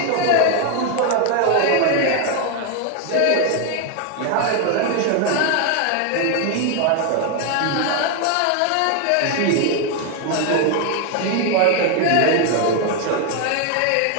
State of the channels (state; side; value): different; both; correlation 0.01